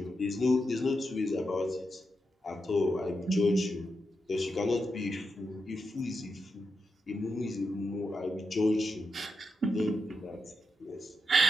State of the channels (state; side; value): normal; both; correlation 0.86